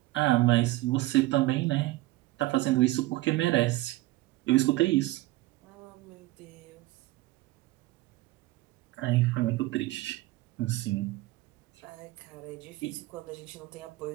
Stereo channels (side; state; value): left; quieter; 18.4 dB